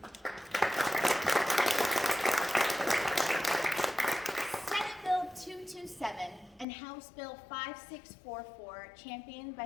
Senate Bill 227 and House Bill 5644, championed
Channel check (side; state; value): right; drops out; at 6.7 s